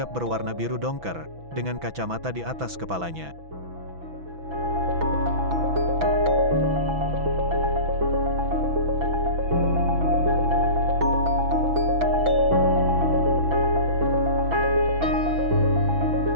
berwarna biru dongker, dengan kacamata di atas kepalanya.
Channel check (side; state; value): left; late; 6.1 ms